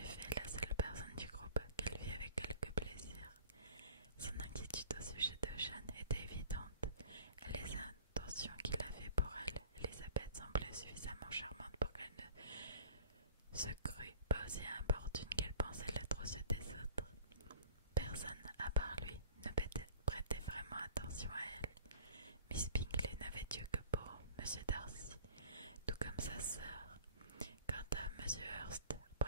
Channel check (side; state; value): both; inverted; correlation -0.45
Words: effet la seule personne du groupe qu'elle vit avec quelque plaisir. Son inquiétude au sujet de Jeanne était évidente, et les intentions qu'il avait pour elle, Elisabeth semblait suffisamment charmante pour qu'elle ne se crût pas aussi importune qu'elle pensait l'être aux yeux des autres. Personne, à part lui, ne prêtait vraiment attention à elle. Miss Bingley n'avait Dieu que pour M. Darcy, tout comme sa sœur. Quant à M. Hurst,